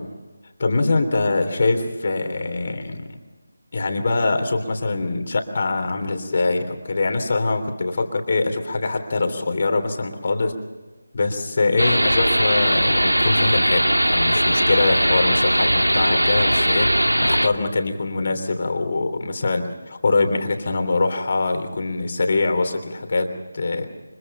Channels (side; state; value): both; inverted; correlation -0.96